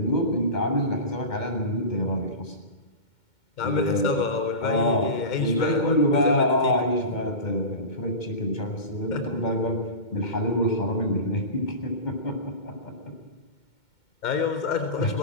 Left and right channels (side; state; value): right; late; 2.2 ms